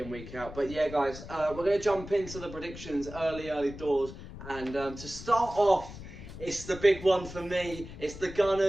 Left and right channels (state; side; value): noise; left; rumble, 13 dB below the sound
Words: week out. But yeah, guys, we're going to jump into the predictions early doors. And to start off, it's the big one for me. It's the